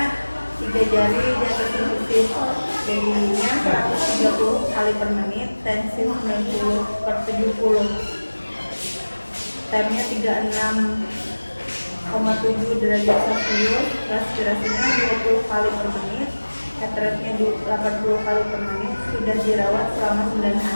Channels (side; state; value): both; inverted; correlation -1.00